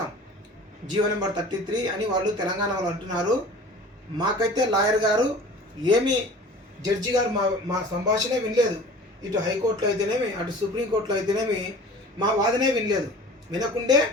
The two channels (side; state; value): both; normal; correlation 0.42